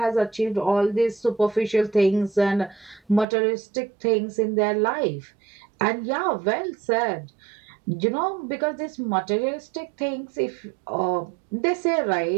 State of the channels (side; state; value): left; drops out; at 3.2 s